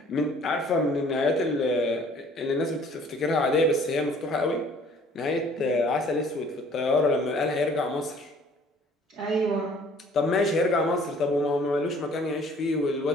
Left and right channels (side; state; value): both; normal; correlation 0.55